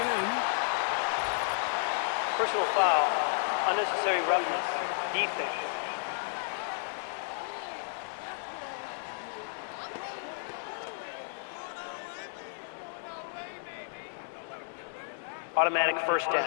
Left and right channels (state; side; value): silent; right; 56 dB below the other